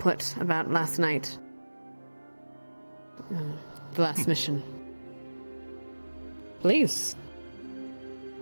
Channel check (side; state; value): both; inverted; correlation -1.00